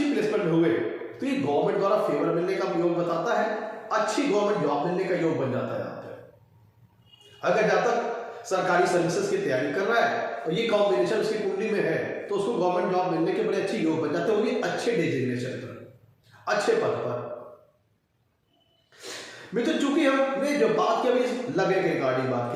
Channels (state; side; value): identical; both; correlation 1.00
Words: प्लेसमेंट में हुए तो ये गवर्नमेंट द्वारा फेवर मिलने का योग बताता है, अच्छी गवर्नमेंट जॉब मिलने का योग बन जाता है यहाँ पे। अगर जातक सरकारी सर्विसेज की तैयारी कर रहा है और ये कॉम्बिनेशन उसकी कुंडली में है तो उसको गवर्नमेंट जॉब मिलने के बड़े अच्छे योग बन जाते हैं, वो भी अच्छे डेजिग्नेशन पर, अच्छे पद पर। मित्र, चूंकि हमने जो बात की अभी लगने के रिगार्डिंग बात